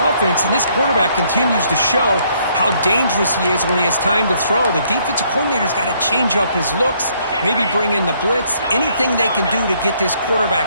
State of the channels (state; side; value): inverted; both; correlation -0.68